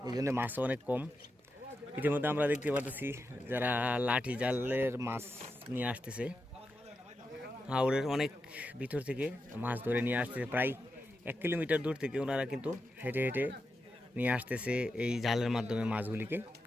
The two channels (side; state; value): both; normal; correlation 0.88